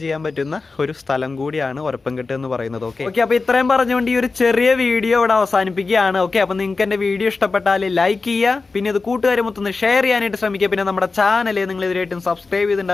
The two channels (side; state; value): right; quieter; 4.0 dB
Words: ചെയ്യാൻ പറ്റുന്ന ഒരു സ്ഥലം കൂടിയാണ് ഒരപ്പംകെട്ട് എന്ന് പറയുന്നത്. ഓക്കെ, അപ്പോൾ ഇത്രയും പറഞ്ഞുകൊണ്ട് ഈ ഒരു ചെറിയ വീഡിയോ ഇവിടെ അവസാനിപ്പിക്കുകയാണ്. ഓക്കെ, അപ്പോൾ നിങ്ങൾക്ക് എൻ്റെ വീഡിയോ ഇഷ്ടപ്പെട്ടാൽ ലൈക്ക് ചെയ്യുക, പിന്നെ ഇത് കൂട്ടുകാരെ മൊത്തം ഷെയർ ചെയ്യാനായിട്ട് ശ്രമിക്കുക. പിന്നെ നമ്മുടെ ചാനൽ നിങ്ങൾ ഇതുവരെയായിട്ടും സബ്സ്ക്രൈബ്